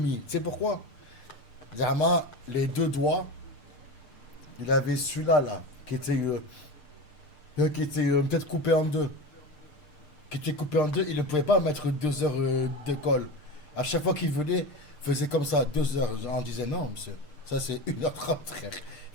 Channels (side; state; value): right; late; 6.6 ms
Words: sais pourquoi? Zama, les deux doigts. Il avait celui-là, là, qui était peut-être coupé en deux. Qui était coupé en deux, il ne pouvait pas mettre 2 heures de colle. À chaque fois qu'il venait, il faisait comme ça, 2 heures. On disait non, monsieur, ça c'est 1h30, frère.